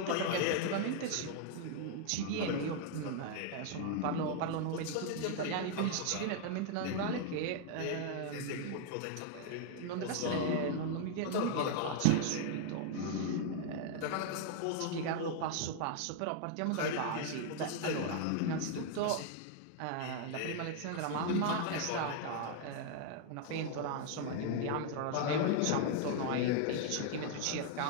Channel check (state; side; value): different; both; correlation 0.00